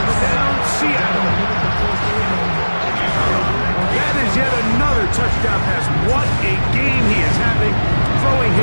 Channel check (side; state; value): both; inverted; correlation -1.00